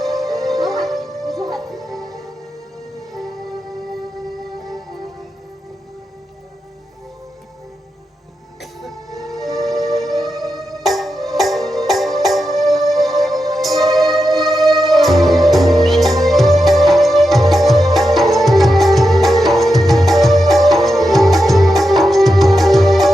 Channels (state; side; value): normal; both; correlation 0.88